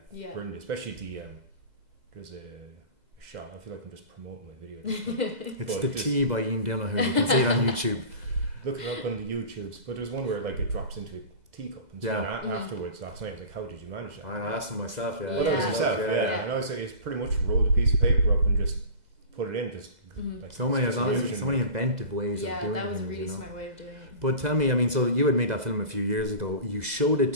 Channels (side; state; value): left; late; 2.0 ms